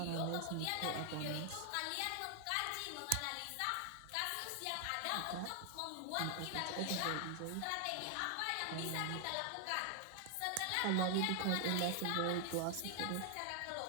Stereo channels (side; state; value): both; different; correlation 0.00